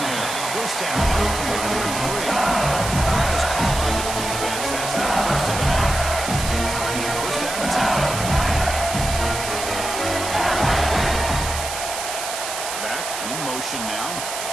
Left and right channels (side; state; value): right; noise; hiss, 5 dB below the sound